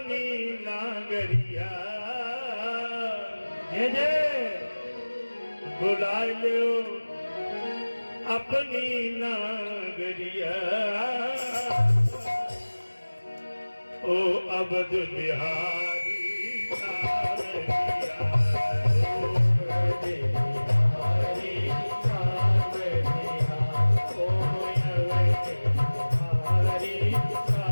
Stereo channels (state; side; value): inverted; both; correlation -1.00